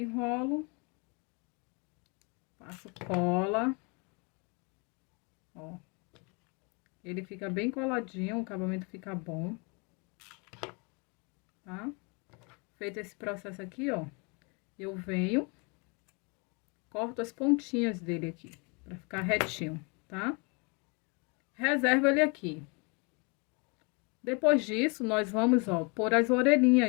passo cola, ó. Ele fica bem coladinho, o acabamento fica bom, tá? Feito esse processo aqui, ó, eu venho, corto as pontinhas dele aqui, pra ficar retinho, tá? Reservo ele aqui. Depois disso, nós vamos, ó, pôr as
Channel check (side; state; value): right; quieter; 31.9 dB